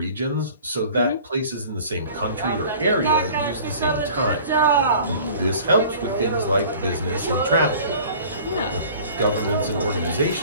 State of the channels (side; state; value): both; inverted; correlation -0.46